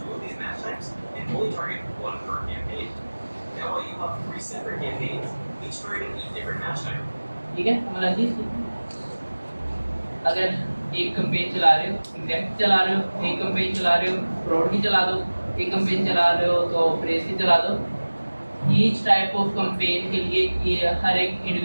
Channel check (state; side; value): inverted; both; correlation -1.00